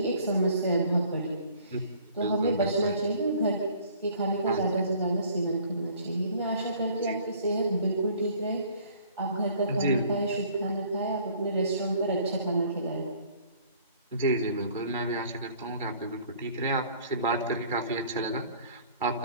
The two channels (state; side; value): inverted; both; correlation -0.55